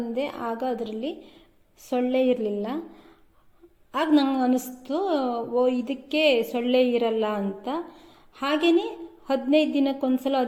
ಆಗ ಅದರಲ್ಲಿ ಸೊಳ್ಳೆ ಇರಲಿಲ್ಲ. ಆಗ ನಂಗೆ ಅನ್ನಿಸ್ತು, ಇದಕ್ಕೆ ಸೊಳ್ಳೆ ಇರಲ್ಲ ಅಂತ. ಹಾಗೆಯೇ 15 ದಿನಕ್ಕೊಂದ್ಸಲ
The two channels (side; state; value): both; identical; correlation 1.00